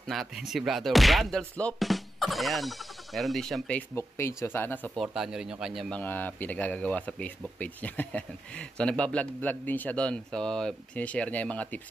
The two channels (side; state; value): both; normal; correlation 0.88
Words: natin si brother Brandel Slope. Ayan, meron din siyang Facebook page. So sana supportahan nyo rin yung kanyang mga pinagagagawa sa Facebook page niya. So nagbablog-vlog din siya doon. So sinishare niya yung mga